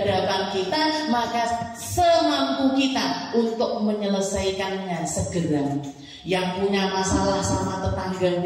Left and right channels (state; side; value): identical; both; correlation 1.00